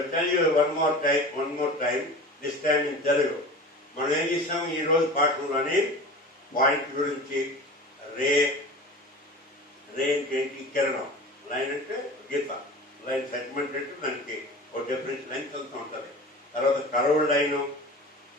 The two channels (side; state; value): both; normal; correlation 0.36